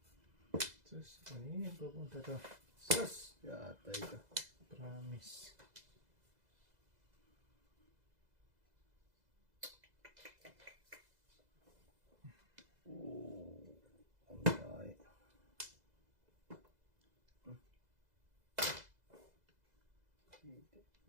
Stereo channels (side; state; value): left; late; 2.0 ms